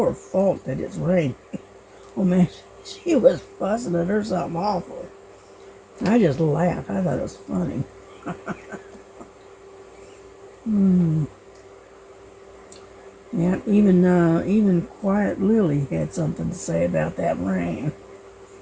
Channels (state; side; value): identical; both; correlation 1.00